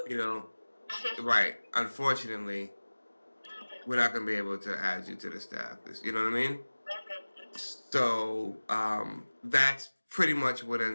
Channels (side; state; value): both; inverted; correlation -1.00